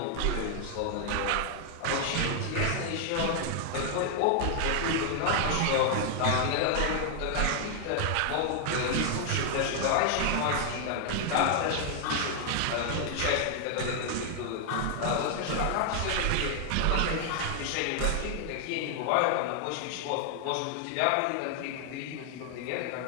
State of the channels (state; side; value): different; both; correlation 0.00